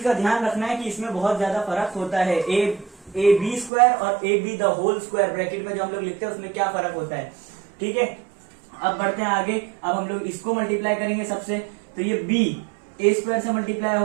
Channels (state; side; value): drops out; left; at 3.7 s